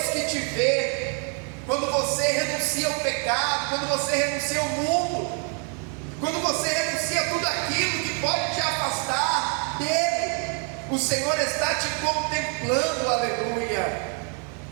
que te vê quando você renuncia ao pecado, quando você renuncia ao mundo, quando você renuncia a tudo aquilo que pode te afastar dele. O Senhor está te contemplando, aleluia.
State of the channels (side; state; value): left; quieter; 39.0 dB